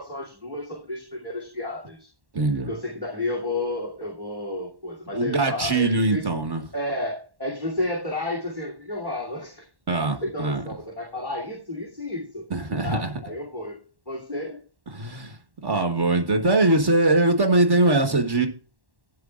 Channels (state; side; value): late; left; 1.1 ms